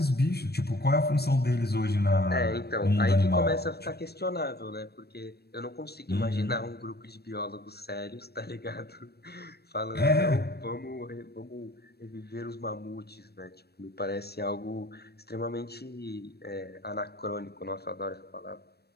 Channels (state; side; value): late; right; 0.47 ms